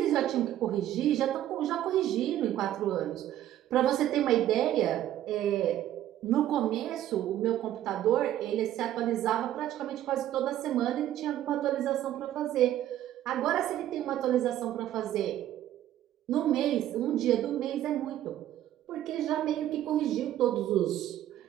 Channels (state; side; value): quieter; left; 12.5 dB